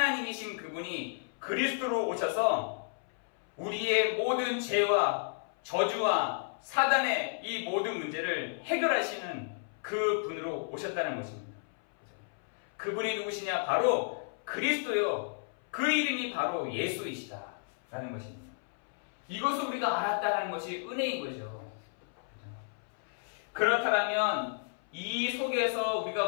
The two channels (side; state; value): right; silent; 56 dB below the other